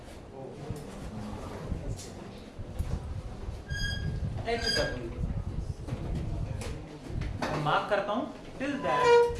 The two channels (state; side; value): identical; both; correlation 1.00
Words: HW मार्क करता हूँ till that